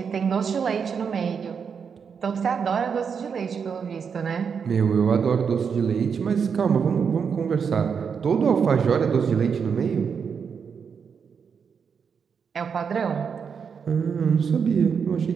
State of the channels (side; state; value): left; quieter; 6.5 dB